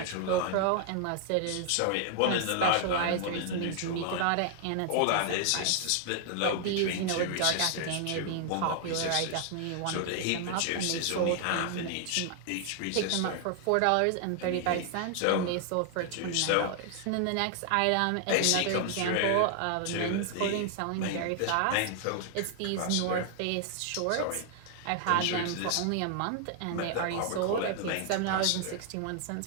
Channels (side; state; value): both; different; correlation 0.00